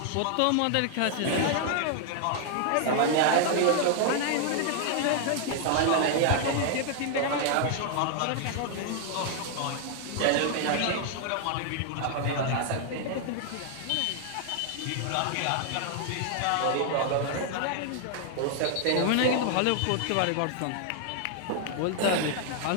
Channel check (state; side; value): different; both; correlation 0.00